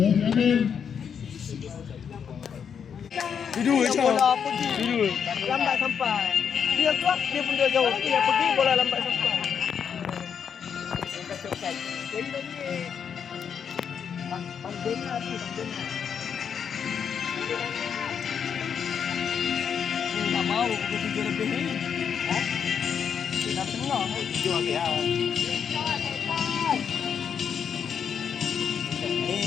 je. Bola pergi. Duduk. Lambat sampai. Dia keluar, dia pun dia jauh. Dia pergi, bola lambat sampai. Jadi lagi. Pandena tu, pandena. Tak mau pukul 7 lebih ni. Ha? Dah tengah. 7 habis lah.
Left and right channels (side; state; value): right; quieter; 7.4 dB